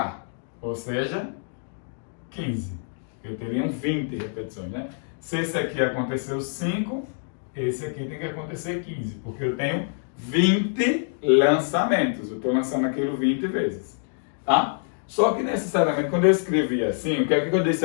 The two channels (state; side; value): silent; right; digital silence